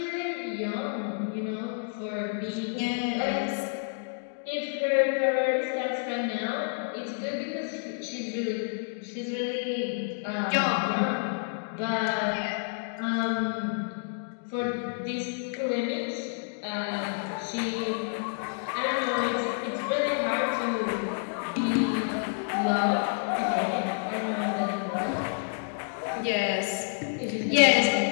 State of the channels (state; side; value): silent; right; digital silence